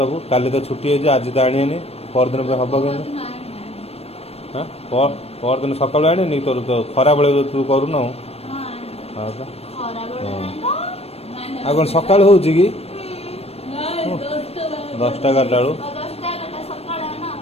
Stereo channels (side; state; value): right; late; 0.29 ms